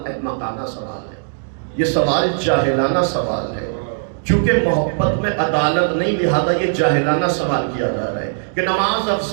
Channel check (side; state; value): left; silent; digital silence